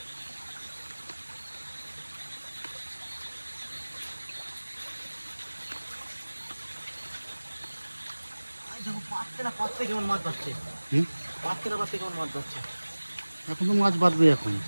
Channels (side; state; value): both; inverted; correlation -1.00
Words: কেমন মাছ বাড়ছে হুম, কেমন মাছ বাড়ছে এখন তো মাছ বাঁধবে এখন।